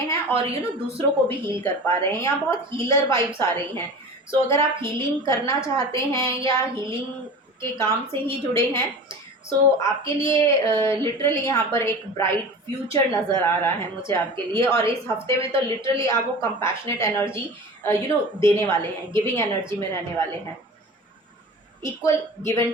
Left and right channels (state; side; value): normal; both; correlation 0.35